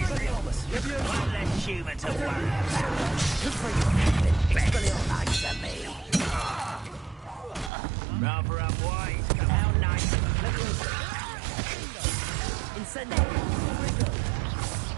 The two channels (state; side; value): drops out; left; at 7.7 s